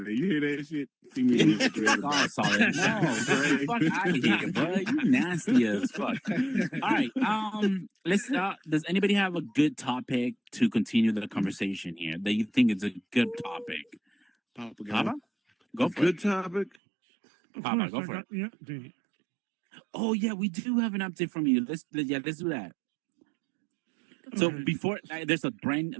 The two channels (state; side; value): drops out; left; at 16.8 s